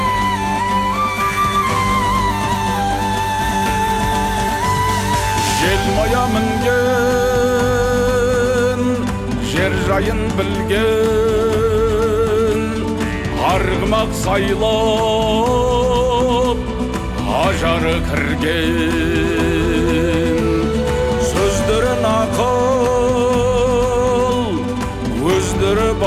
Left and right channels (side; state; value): both; identical; correlation 1.00